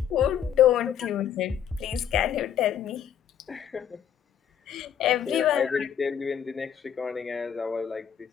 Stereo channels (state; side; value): quieter; right; 9.0 dB